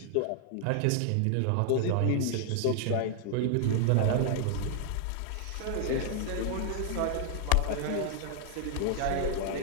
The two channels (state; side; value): different; both; correlation 0.00